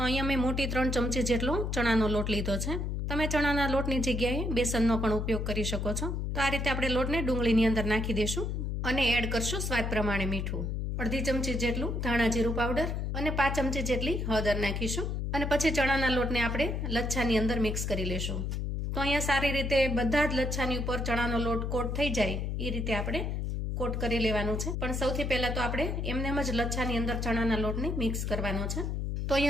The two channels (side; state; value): left; noise; hum, 1 dB below the sound